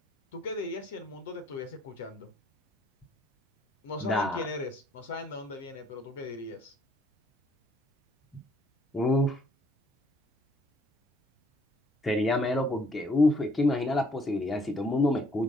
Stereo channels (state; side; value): normal; both; correlation 0.65